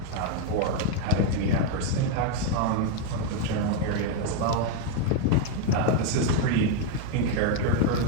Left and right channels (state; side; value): different; both; correlation 0.01